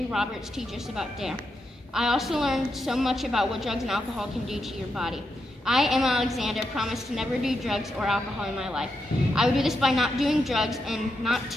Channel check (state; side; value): normal; both; correlation 0.84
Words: Roberts teach us about DARE. I also learned so much about what drugs and alcohol can do to your body. I, Emma Alexander, promise to never do drugs or alcohol in my life. I will do this by not doing drugs and not